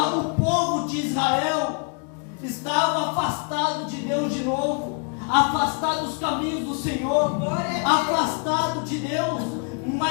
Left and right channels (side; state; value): right; quieter; 39.4 dB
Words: povo de Israel estava afastado de Deus de novo, afastado dos caminhos do Senhor, afastado de Deus,